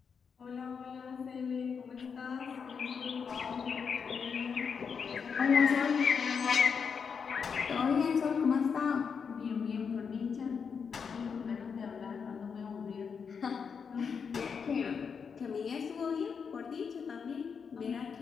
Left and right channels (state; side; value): quieter; right; 6.2 dB